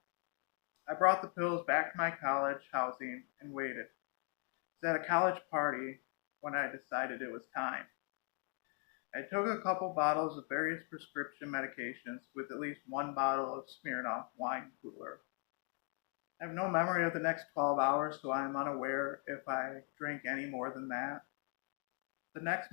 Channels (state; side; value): quieter; right; 38.4 dB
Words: I brought the pills back to my college housing and waited. It was at a college party when I decided it was time. I took a couple bottles of various prescription medications with at least one bottle of Smirnoff wine cooler. I have no memory of the next 12 hours, so I am unaware if I drank any more than that. The next